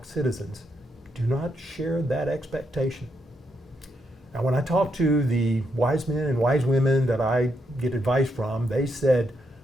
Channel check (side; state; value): both; normal; correlation 0.79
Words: citizens, do not share that expectation. Now, when I talk to the wise men and wise women that I get advice from, they said,